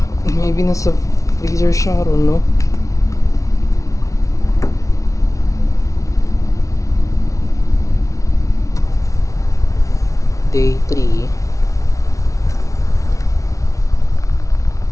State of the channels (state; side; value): late; right; 0.16 ms